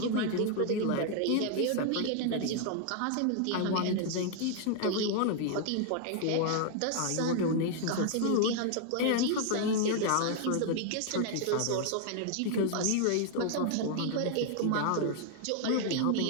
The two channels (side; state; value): both; different; correlation 0.00